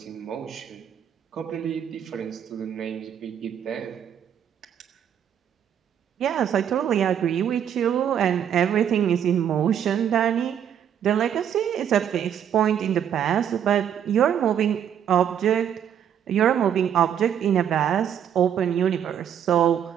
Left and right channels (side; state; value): left; quieter; 9.1 dB